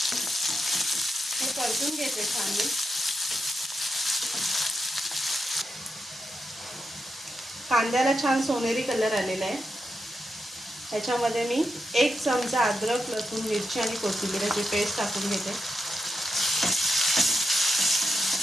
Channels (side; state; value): both; normal; correlation 0.86